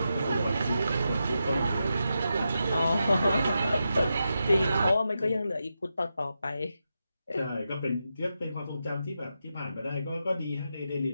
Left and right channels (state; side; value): inverted; both; correlation -0.87